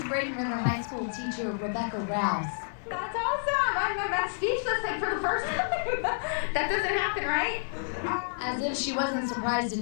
Braden River High School teacher Rebecca Rouse. That's awesome. I'm speechless like for the first time. That doesn't happen, right? As if she wasn't surprised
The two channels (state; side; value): silent; right; digital silence